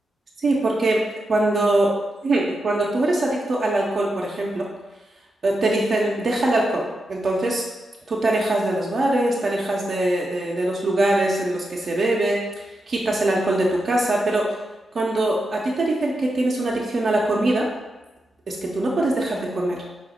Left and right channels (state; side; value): normal; both; correlation 0.87